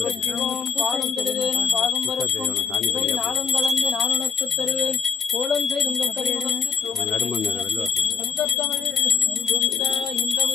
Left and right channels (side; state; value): right; quieter; 6.1 dB